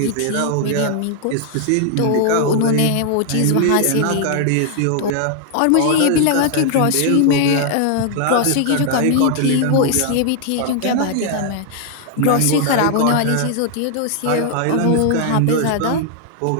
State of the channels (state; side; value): different; both; correlation 0.00